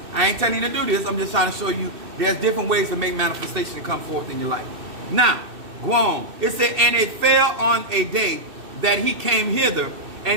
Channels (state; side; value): late; left; 2.6 ms